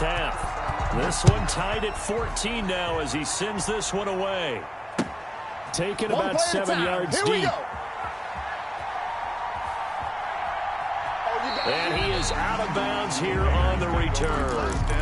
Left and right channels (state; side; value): identical; both; correlation 1.00